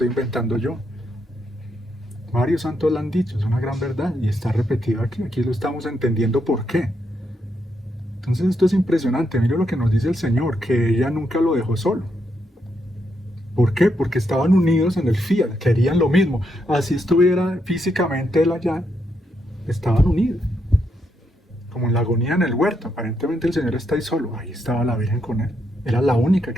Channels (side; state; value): both; normal; correlation 0.79